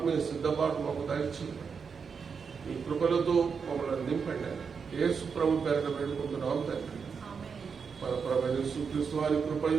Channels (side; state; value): left; quieter; 5.9 dB